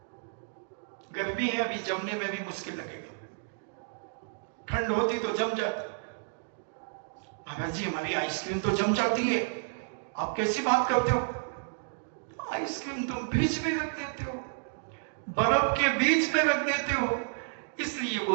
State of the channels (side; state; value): left; silent; digital silence